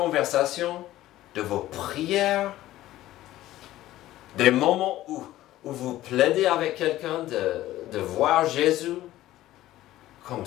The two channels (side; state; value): right; quieter; 15.0 dB